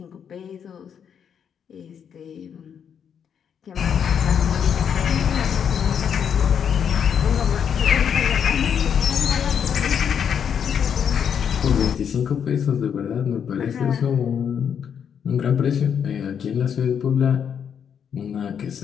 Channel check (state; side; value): quieter; right; 7.9 dB